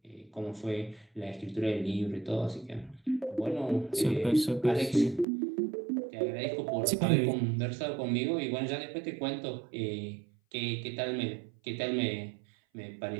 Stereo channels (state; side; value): drops out; left; at 5.2 s